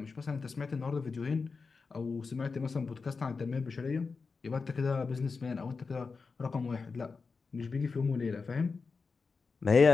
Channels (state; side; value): quieter; right; 4.7 dB